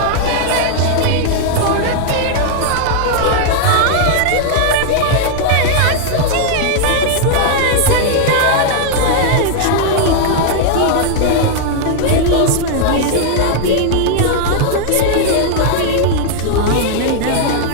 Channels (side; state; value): both; different; correlation -0.01